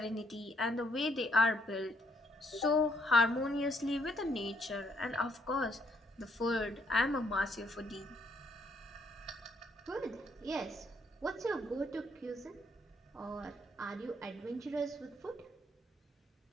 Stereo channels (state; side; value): normal; both; correlation 0.71